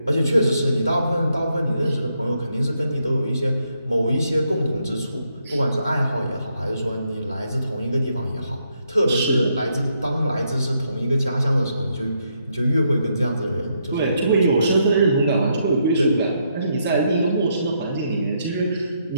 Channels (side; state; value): both; inverted; correlation -0.77